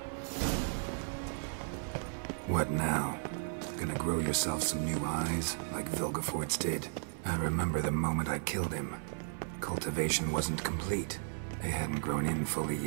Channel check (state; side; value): silent; left; 55 dB below the other